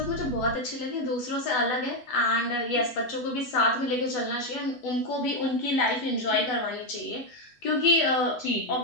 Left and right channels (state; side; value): late; right; 8.1 ms